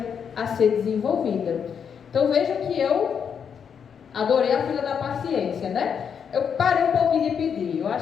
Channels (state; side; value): quieter; right; 7.3 dB